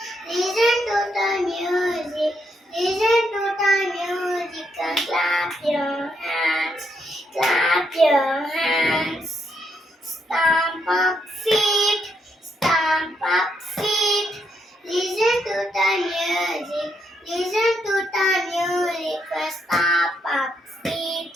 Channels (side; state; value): both; normal; correlation 0.77